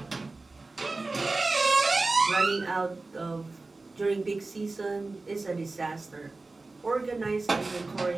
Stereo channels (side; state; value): left; quieter; 3.4 dB